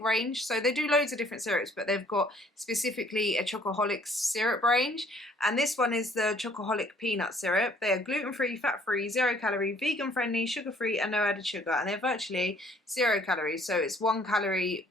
So they do loads of different syrups, but they've got specifically a Chocoholic syrup range, and this one is the Chocoholic peanut syrup. They are gluten-free, fat-free, 0 calorie, vegan-friendly, sugar-free, and no added sugar, and they're virtually 0 calories. So it's 1 calorie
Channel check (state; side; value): normal; both; correlation 0.59